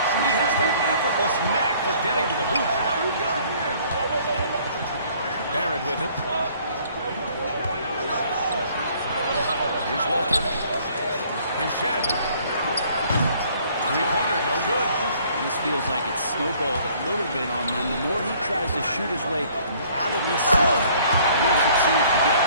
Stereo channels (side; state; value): both; inverted; correlation -0.58